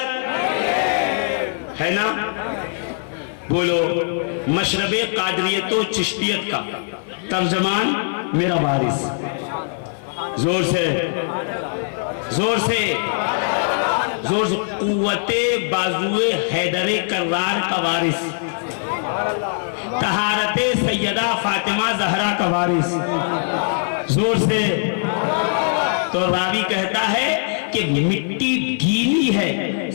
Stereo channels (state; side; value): silent; right; 57 dB below the other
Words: ہے نا؟ بولو، مشرب قادریت و چشتیت کا ترجمان میرا وارث، زور سے زور سے زور سے، قوت بازوئے حیدر کرار کا وارث، طہارت سیدہ فاطمہ زہرا کا وارث، زور سے۔ تو راوی کہتا ہے کہ مٹی گیلی ہے،